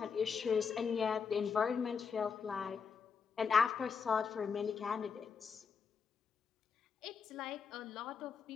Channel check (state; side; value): quieter; right; 6.0 dB